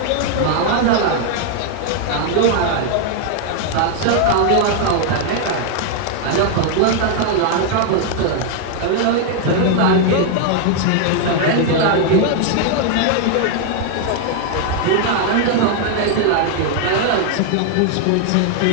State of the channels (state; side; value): different; both; correlation 0.00